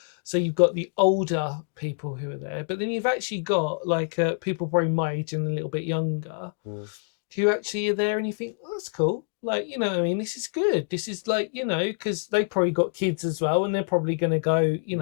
So you've got the older people who are there, but then you've actually got like people probably my age and a little bit younger who actually are there, and you think, oh, that's cool. Like, you know what I mean? This is good. This is like, you know, because they probably got kids as well, and they're probably going to go, you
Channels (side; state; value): right; silent; 61 dB below the other